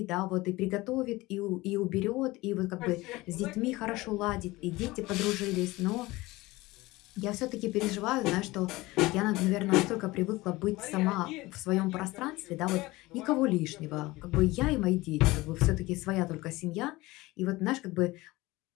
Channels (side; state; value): right; quieter; 20.3 dB